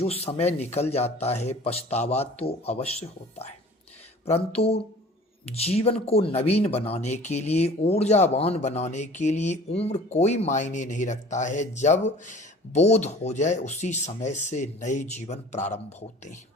समय निकल जाता है, पछतावा तो अवश्य होता है, परंतु जीवन को नवीन बनाने के लिए, ऊर्जावान बनाने के लिए उम्र कोई मायने नहीं रखता है। जब बोध हो जाए उसी समय से नए जीवन प्रारंभ होते हैं।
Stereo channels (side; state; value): both; normal; correlation 0.46